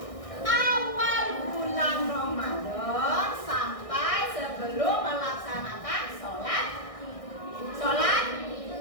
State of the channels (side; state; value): right; late; 1.6 ms